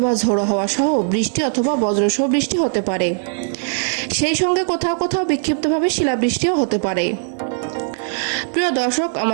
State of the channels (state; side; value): silent; left; 66 dB below the other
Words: ঝোড়ো হাওয়া সহ বৃষ্টি অথবা বজ্রসহ বৃষ্টি হতে পারে। সেই সঙ্গে কোথাও কোথাও বিক্ষিপ্তভাবে শিলাবৃষ্টিও হতে পারে। প্রিয় দর্শক,